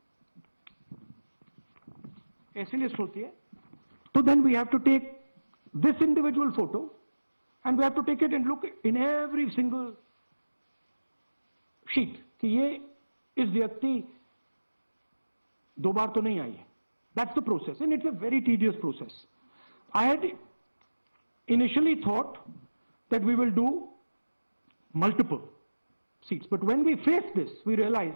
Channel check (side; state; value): both; inverted; correlation -1.00